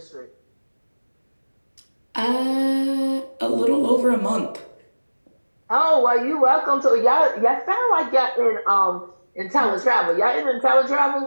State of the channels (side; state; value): both; inverted; correlation -1.00